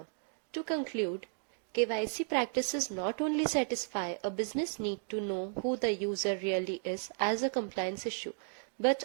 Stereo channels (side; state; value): left; silent; digital silence